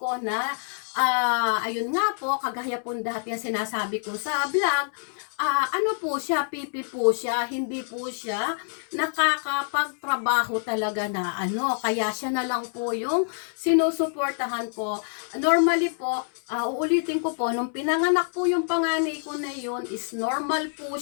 ko na, ayun nga po, kagaya po dati yung sinasabi ko sa vlog, ano po siya, pipi po siya, hindi po siya nakakapagtrabaho talaga na ano, kaya siya na lang po yung sinusuportahan ko. Normally po, uulitin ko po, nung pinanganak po yung panganay ko na yun, is normal po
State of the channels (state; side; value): silent; right; 61 dB below the other